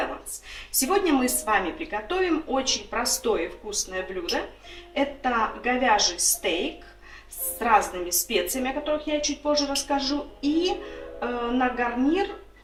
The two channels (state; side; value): identical; both; correlation 1.00